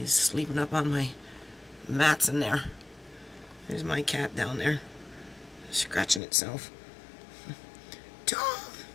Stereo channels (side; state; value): right; drops out; at 6.2 s